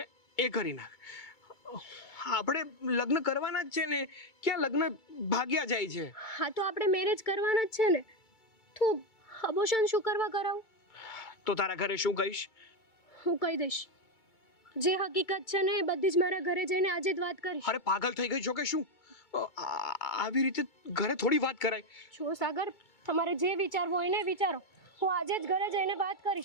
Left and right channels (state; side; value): late; right; 2.2 ms